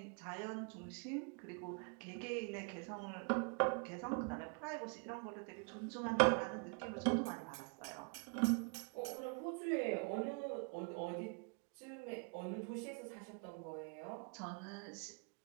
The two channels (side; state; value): left; quieter; 37.7 dB